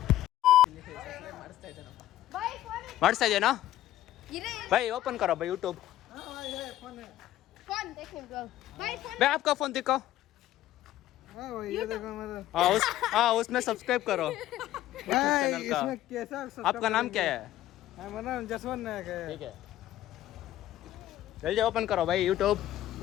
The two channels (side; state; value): right; quieter; 13.7 dB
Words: ಮಾಡಿಸ್ತಾ ಇದೆಯಾ भाई? ओपन करो भाई यूट्यूब। फोन देखने दो भाई। फोन भाई आपका फोन दिखाओ। हाँ उसमें सब्सक्राइब करो चैनल का। इसमें कैसा आपका नाम क्या है? मेरा नाम जसवंत नायक है। ठीक है जल्दी ओपन करो भाई यूट्यूब।